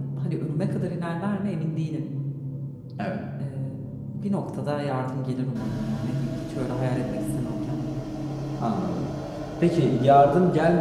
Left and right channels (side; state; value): both; identical; correlation 1.00